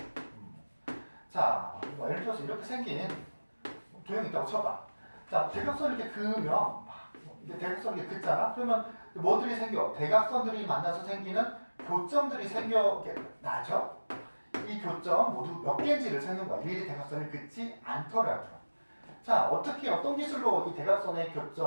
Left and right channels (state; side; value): inverted; both; correlation -1.00